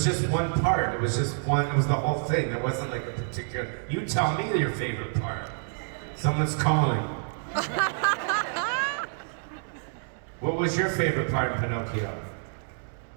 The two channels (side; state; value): left; silent; digital silence